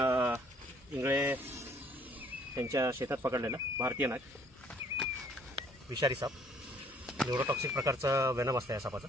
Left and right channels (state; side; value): normal; both; correlation 0.60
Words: इंगळे त्यांच्या शेतात पकडलेला भारतीय नाग, विषारी साप. न्यूरोटॉक्सिक प्रकारचं वेनम असतं या सापाचं.